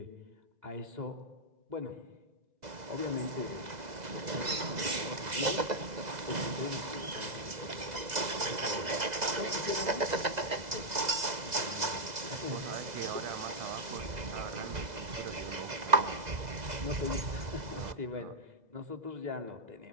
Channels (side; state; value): left; late; 2.0 ms